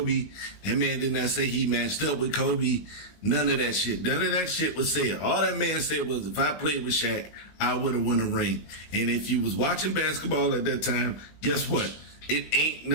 That man did not say he matched up with Kobe. None of that shit. None of that shit was said. All that man said was, if I played with Shaq, I would have won a ring. And if you was watching basketball at that time, guess what? It ain't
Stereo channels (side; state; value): right; late; 20 ms